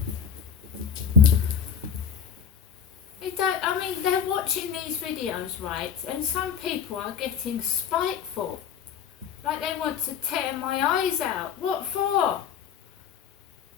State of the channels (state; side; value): quieter; right; 7.6 dB